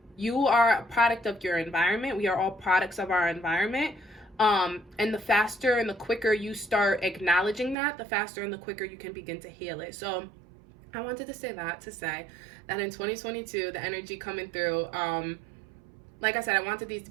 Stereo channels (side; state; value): left; drops out; at 7.8 s